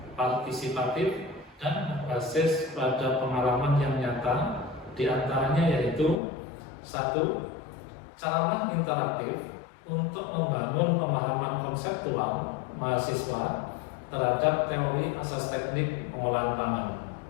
partisipatif, dan berbasis pada pengalaman yang nyata, diantaranya yaitu 1. Caralah interaktif untuk membangun pemahaman konseptual mahasiswa terhadap teori asas teknik pengolahan pangan.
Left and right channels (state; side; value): drops out; right; at 6.2 s